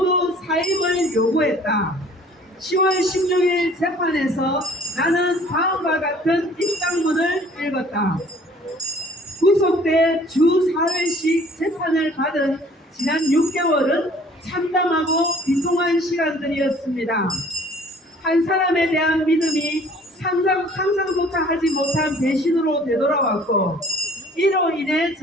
사임을 요구했다. 10월 16일 재판에서 나는 다음과 같은 입장문을 읽었다. 구속돼 주 4회씩 재판을 받은 지난 6개월은 참담하고 비통한 시간들이었습니다. 한 사람에 대한 믿음이 상상조차 하지 못한 배신으로 되돌아왔고 이로 인해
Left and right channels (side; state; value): both; normal; correlation 0.54